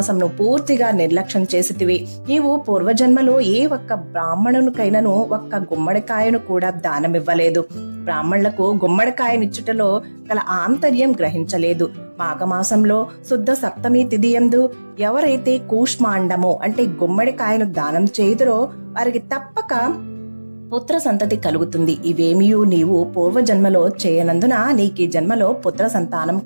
పూర్తిగా నిర్లక్ష్యం చేసితివి. నీవు పూర్వజన్మలో ఏ ఒక్క బ్రాహ్మణునికైనను ఒక్క గుమ్మడికాయను కూడా దానమివ్వలేదు. బ్రాహ్మణులకు గుమ్మడికాయనిచ్చుటలో గల ఆంతర్యం గ్రహించలేదు. మాఘమాసంలో శుద్ధ సప్తమి తిథియందు ఎవరైతే కూష్మాండము అంటే గుమ్మడికాయను దానం చేయుదురో వారికి తప్పక పుత్ర సంతతి కలుగుతుంది. ఇవేమియూ నీవు పూర్వజన్మలో చేయనందున నీకు ఈ జన్మలో పుత్ర సంతానం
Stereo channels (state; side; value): inverted; both; correlation -1.00